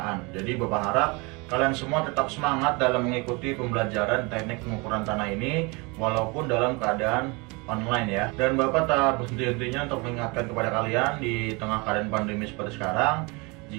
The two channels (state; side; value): quieter; left; 27.9 dB